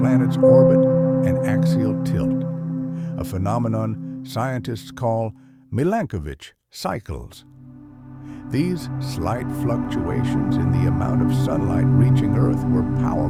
orbit and axial tilt, a phenomenon scientists call Milankovitch cycles. These slight fluctuations in the amount of sunlight reaching Earth were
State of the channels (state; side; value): identical; both; correlation 1.00